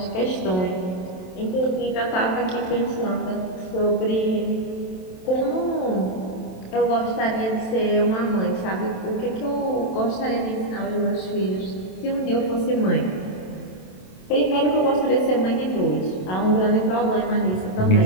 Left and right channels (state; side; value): late; right; 27 ms